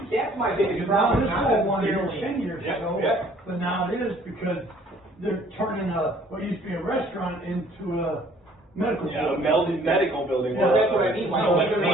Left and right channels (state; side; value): normal; both; correlation 0.57